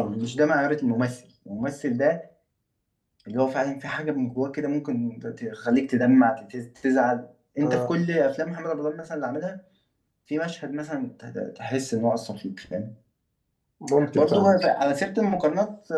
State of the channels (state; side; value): identical; both; correlation 1.00